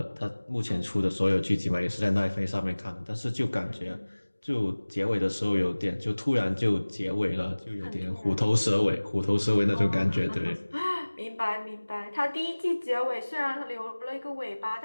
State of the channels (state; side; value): inverted; both; correlation -1.00